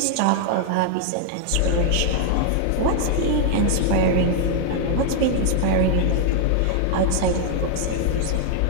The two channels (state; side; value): different; both; correlation 0.00